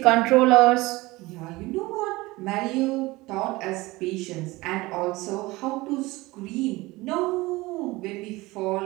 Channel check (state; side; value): quieter; left; 21.0 dB